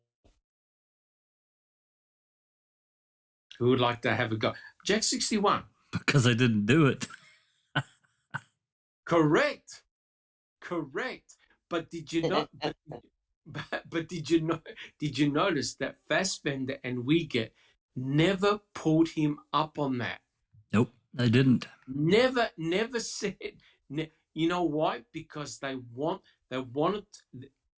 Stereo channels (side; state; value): both; identical; correlation 1.00